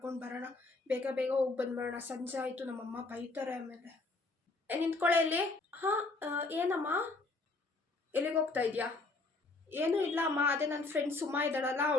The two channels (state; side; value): quieter; right; 3.4 dB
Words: ಬರೋಣ, ಬೇಗ ಬೇಗ ಹೋಗಿ ಬಂದ್ಬಿಡೋಣ, ಸಂಜೆ ಆಯಿತು, ನಮ್ಮಮ್ಮ ಬೈತಾರೆ ಆಮೇಲೆ. ನಿಂತ್ಕೊಳ್ಳೆ ಇಲ್ಲಿ. ಹಾಂ, ಏನಮ್ಮ, ಎಲ್ಲಿಗೆ ಹೋಗ್ತಾ ಇದೆಯಾ? ಏನೂ ಇಲ್ಲ ಅಮ್ಮ, ಅದೇ ನನ್ನ ಫ್ರೆಂಡ್ ಸುಮಾ ಇದ್ದಾಳಲ್ಲ,